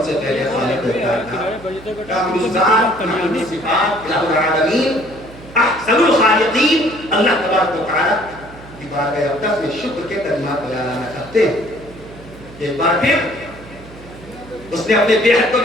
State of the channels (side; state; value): right; noise; hum, 18 dB below the sound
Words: سے پہلے خالق کائنات کامل ذات کامل صفات الہ العالمین احسن الخالقین اللہ تبارک و تعالیٰ کی بارگاہ اقدس میں شکر کے کلمات بیان کرتے ہیں. ایک بار پھر اس نے اپنے بے حد و